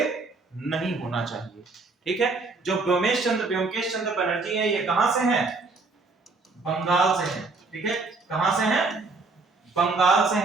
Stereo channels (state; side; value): quieter; left; 3.8 dB